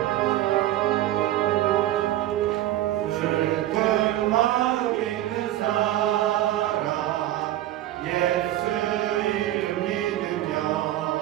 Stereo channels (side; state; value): left; quieter; 14.0 dB